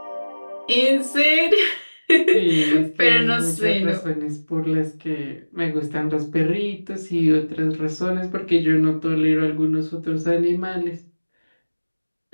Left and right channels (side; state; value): both; inverted; correlation -1.00